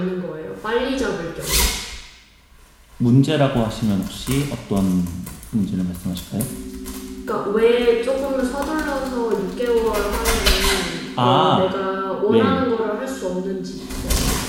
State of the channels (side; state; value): both; identical; correlation 1.00